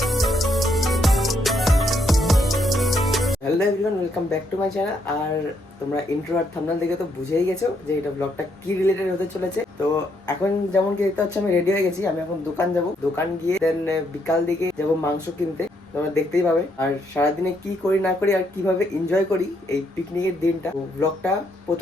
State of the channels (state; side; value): normal; both; correlation 0.74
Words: everyone, welcome back to my channel. আর তোমরা intro আর thumbnail দেখে তো বুঝেই গেছো যে এটা ব্লগটা কি রিলেটেড হতে চলেছে। তো এখন যেমন কি দেখতে পাচ্ছ, আমি রেডি হয়ে গেছি। আমি এখন দোকান যাব, দোকান গিয়ে দেন বিকাল দিকে যাব মাংস কিনতে। তোমরা দেখতেই পাবে। আর সারাদিনে কি করি না করি আর কিভাবে এনজয় করি এই পিকনিকের দিনটা, ব্লগটা